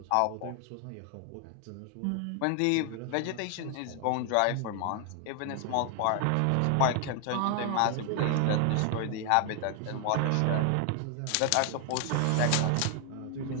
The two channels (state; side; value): different; both; correlation 0.00